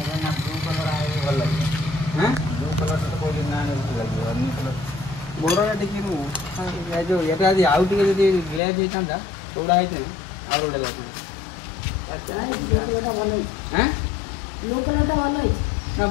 बड़ा टे जो ये आउ टे ग्लेज होता थोड़ा है आउ गोटे लगे ना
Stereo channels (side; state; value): right; drops out; at 8.6 s